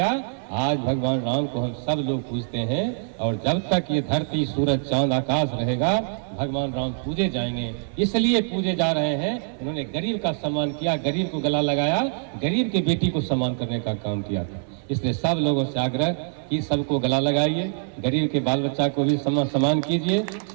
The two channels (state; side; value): silent; left; digital silence